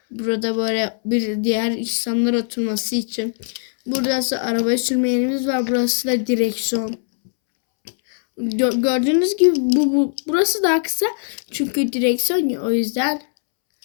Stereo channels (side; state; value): right; silent; 66 dB below the other